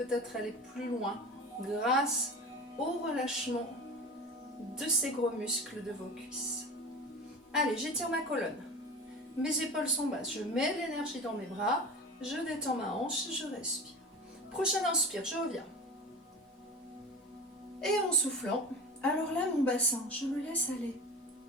aller plus loin grâce au relâchement de ces gros muscles de vos cuisses. Allez, j'étire ma colonne. Mes épaules sont basses. Je mets de l'énergie dans mes bras. Je détends ma hanche et je respire. Prochaine inspire, je reviens. Et en soufflant, alors là, mon bassin, je le laisse aller.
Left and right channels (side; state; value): both; normal; correlation 0.33